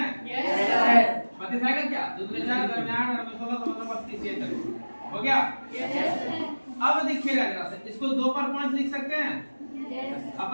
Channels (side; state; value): both; inverted; correlation -1.00